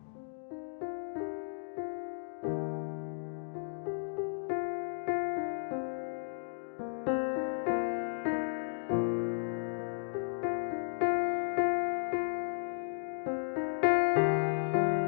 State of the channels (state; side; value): silent; right; digital silence